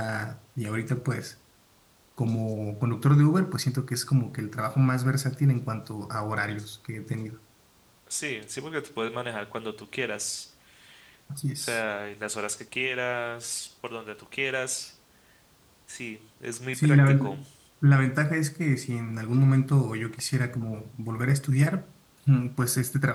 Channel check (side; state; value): both; identical; correlation 1.00